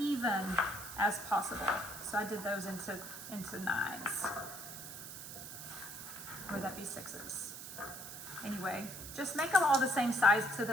as possible. So I did those into 9s. Or that'd be 6s. Anyway, just make them all the same size so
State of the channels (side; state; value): right; noise; hiss, 10 dB below the sound